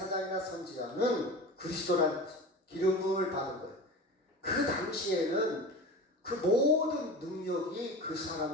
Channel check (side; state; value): both; normal; correlation 0.32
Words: 선지자는 그리스도란 기름 부음을 받은 거예요. 그 당시에는 그 모든 능력이 그